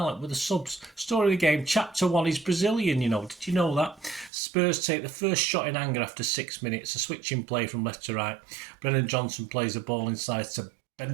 with the subs. Story of the game, Chapter 1 is Brazilian, Did you know that? Spurs take the first shot in anger after 6 minutes. A switching play from left to right. Brennan Johnson plays the ball inside to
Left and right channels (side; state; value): left; drops out; at 4.3 s